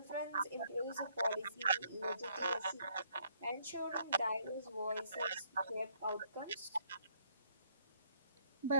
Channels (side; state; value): both; inverted; correlation -0.67